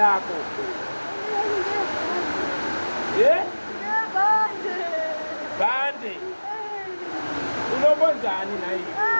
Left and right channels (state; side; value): inverted; both; correlation -1.00